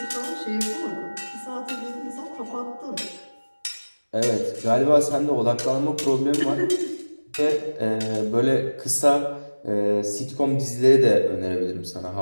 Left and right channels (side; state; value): both; inverted; correlation -1.00